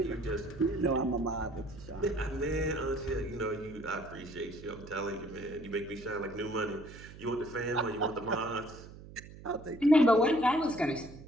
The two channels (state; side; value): noise; right; hum, 16 dB below the sound